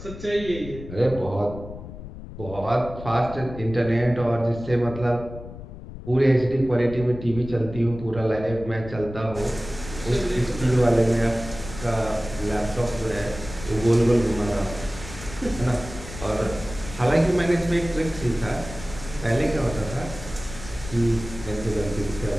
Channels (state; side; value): noise; left; rumble, 12 dB below the sound